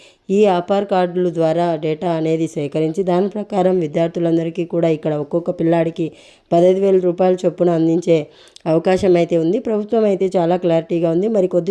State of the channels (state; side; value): identical; both; correlation 1.00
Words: ఈ ఆధార్ కార్డుల ద్వారా డేటా అనేది సేకరించి దాని ప్రకారం విద్యార్థులందరికీ కూడా ఇక్కడ ఒక్కొక్క పిల్లాడికి 15,000 రూపాయల చొప్పున అందించే అవకాశం అయితే ఉంది. ప్రభుత్వం అయితే చాలా క్లారిటీగా ఉంది. మరి